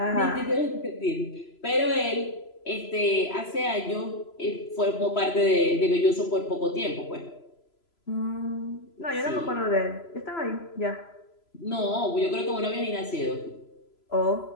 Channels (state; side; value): late; right; 3.0 ms